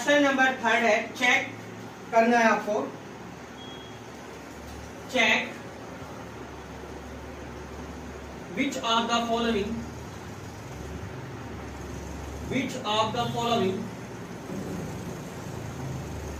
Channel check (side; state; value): both; identical; correlation 1.00